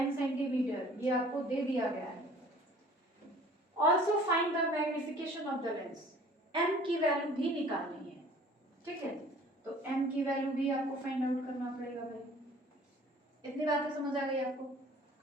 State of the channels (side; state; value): both; normal; correlation 0.51